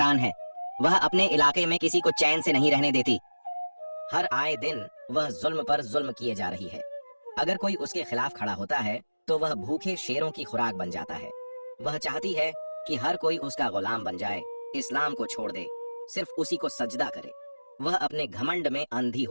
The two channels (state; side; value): inverted; both; correlation -1.00